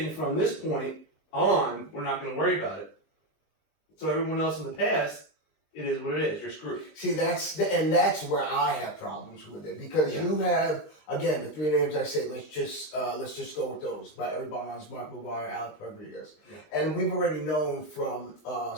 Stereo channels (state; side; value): late; right; 19 ms